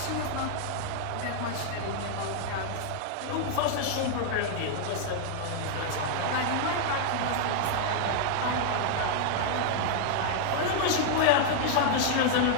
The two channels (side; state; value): both; different; correlation -0.01